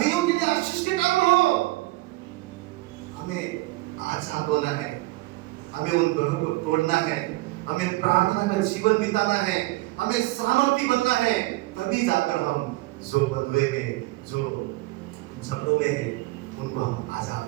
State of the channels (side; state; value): left; quieter; 20.4 dB